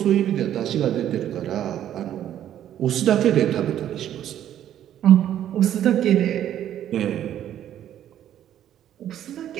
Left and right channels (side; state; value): left; quieter; 11.1 dB